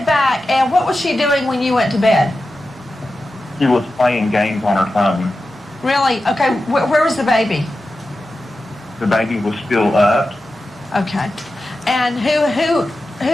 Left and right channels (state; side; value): normal; both; correlation 0.92